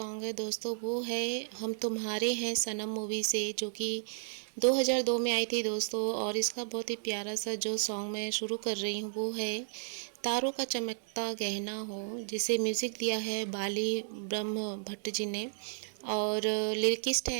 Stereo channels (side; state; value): left; silent; digital silence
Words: है दोस्तों, वो है हम तुम्हारे हैं सनम मूवी से, जो कि 2002 में आई थी दोस्तों। और इसका बहुत ही प्यारा सा जो सॉन्ग मैं शुरू कर रही हूँ वो है तारों का चमकता गहना हो, जिसे म्यूज़िक दिया है बाली ब्रह्म भट्ट जी ने। और लिरिकिस्ट